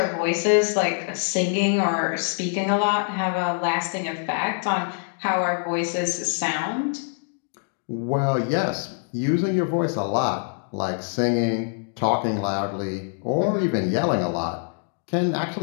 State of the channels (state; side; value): silent; right; digital silence